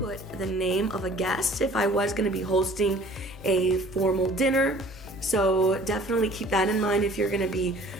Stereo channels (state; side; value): normal; both; correlation 0.51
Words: the name of a guest if I was going to be hosting a formal dinner. So definitely keep that in mind if you're going to be